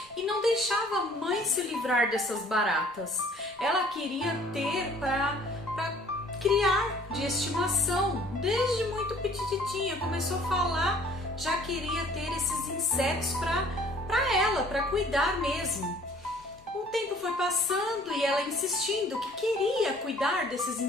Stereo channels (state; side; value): noise; left; rumble, 30 dB below the sound